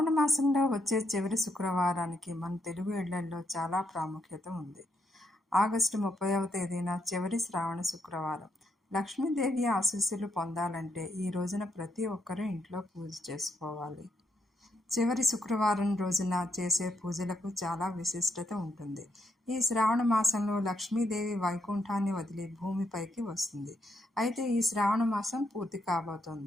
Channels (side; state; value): both; normal; correlation 0.78